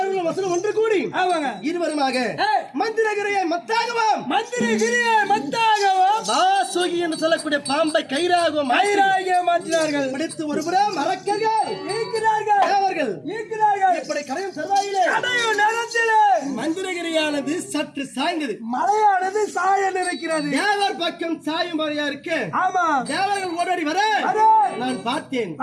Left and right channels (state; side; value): identical; both; correlation 1.00